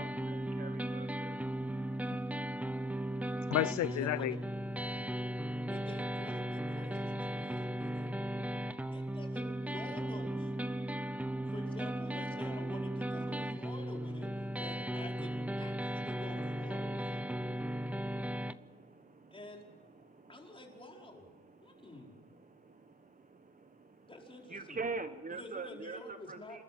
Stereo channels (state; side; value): normal; both; correlation 0.74